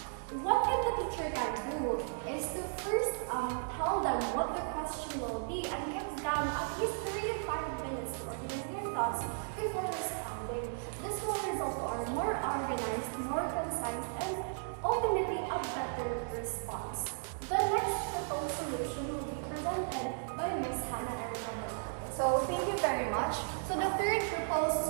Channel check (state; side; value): silent; left; digital silence